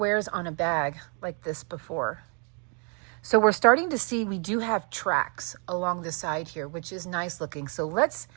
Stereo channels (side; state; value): left; quieter; 37.8 dB